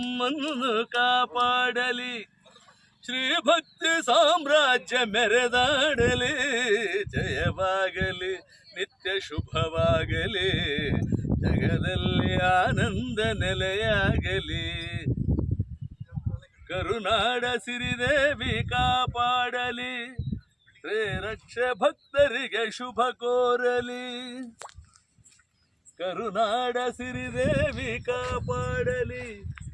ಕಾಪಾಡಲಿ. ಶ್ರೀ ಭಕ್ತಿ ಸಾಮ್ರಾಜ್ಯ ಮೆರೆದಾಡಲಿ. ಜಯವಾಗಲಿ ನಿತ್ಯ ಶುಭವಾಗಲಿ, ಜಗದಲ್ಲಿ ಆನಂದ ನೆಲೆಯಾಗಲಿ. ಕರುನಾಡ ಸಿರಿದೇವಿ ಕಾಪಾಡಲಿ, ಶ್ರೀರಕ್ಷ ಭಕ್ತರಿಗೆ ಶುಭ ಕೋರಲಿ. ಕರುನಾಡ ಸಿರಿದೇವಿ ಕಾಪಾಡಲಿ,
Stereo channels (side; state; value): both; identical; correlation 1.00